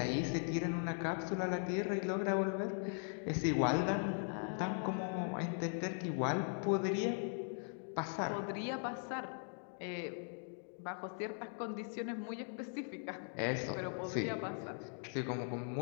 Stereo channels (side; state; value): right; silent; 51 dB below the other